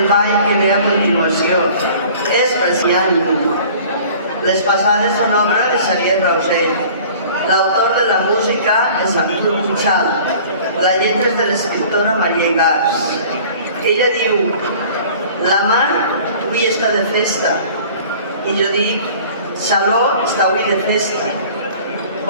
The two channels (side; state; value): both; inverted; correlation -0.47